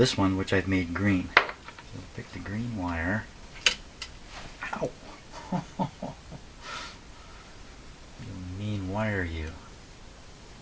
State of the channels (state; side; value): identical; both; correlation 1.00